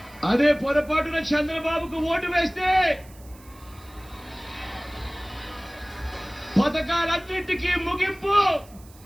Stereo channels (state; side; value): noise; right; hiss, 25 dB below the sound